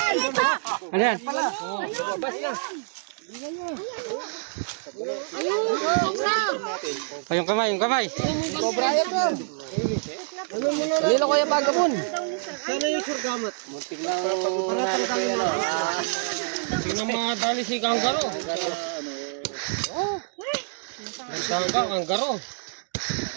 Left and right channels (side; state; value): left; silent; digital silence